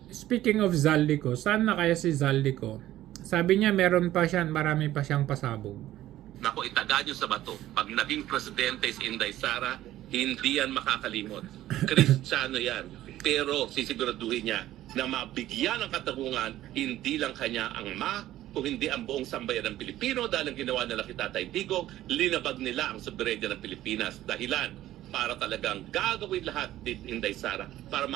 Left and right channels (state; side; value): quieter; left; 14.1 dB